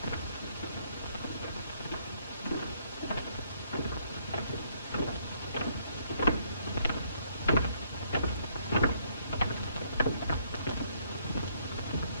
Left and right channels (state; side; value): inverted; both; correlation -0.69